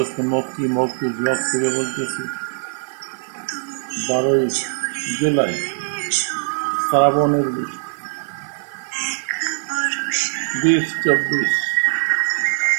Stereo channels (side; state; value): left; silent; digital silence